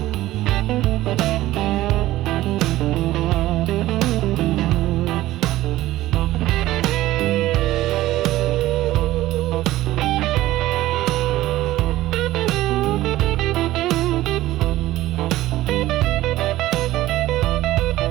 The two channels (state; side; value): quieter; left; 15.8 dB